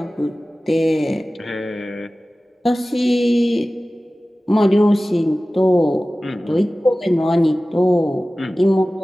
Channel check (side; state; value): both; normal; correlation 0.97